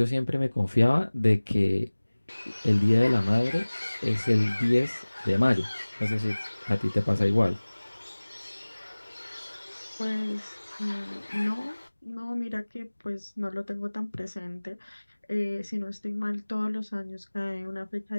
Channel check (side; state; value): both; inverted; correlation -1.00